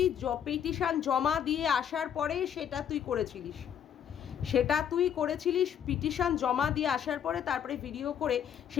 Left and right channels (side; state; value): right; quieter; 9.0 dB